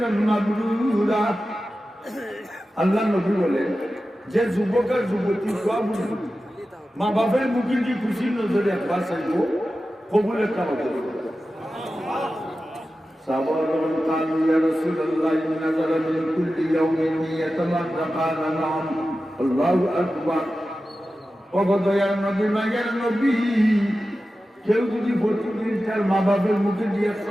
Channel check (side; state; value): both; normal; correlation 0.93